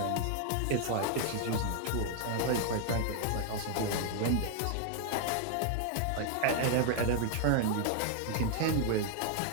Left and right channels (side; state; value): both; different; correlation 0.00